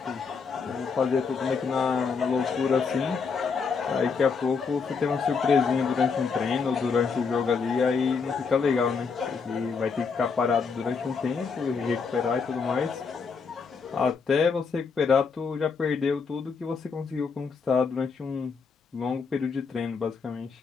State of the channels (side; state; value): right; quieter; 5.3 dB